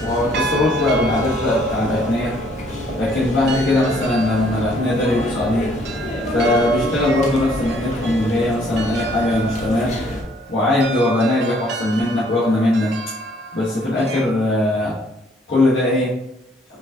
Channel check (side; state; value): both; normal; correlation 0.63